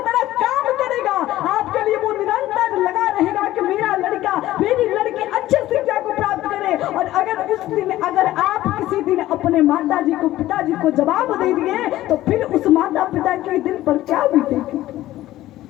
तरह काम करेगा, आपके लिए वो निरंतर लगा रहेगा कि मेरा लड़का मेरी लड़की अच्छे शिक्षा को प्राप्त करे। और अगर उस दिन अगर आप किसी दिन अपने माता जी को पिताजी को जवाब दे दिए तो फिर उस माता पिता के दिल पर क्या बीतेगी।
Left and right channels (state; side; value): quieter; right; 15.1 dB